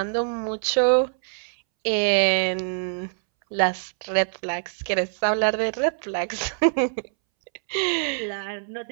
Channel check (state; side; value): silent; left; 62 dB below the other